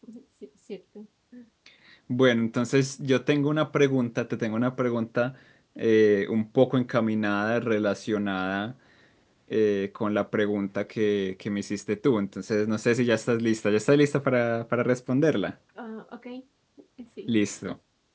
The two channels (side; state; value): both; identical; correlation 1.00